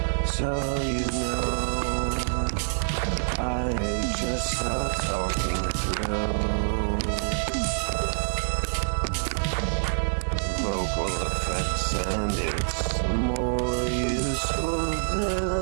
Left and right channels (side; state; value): left; silent; digital silence